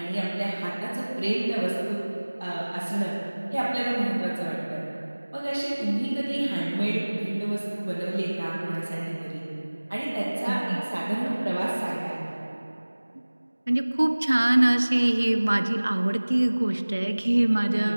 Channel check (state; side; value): inverted; both; correlation -1.00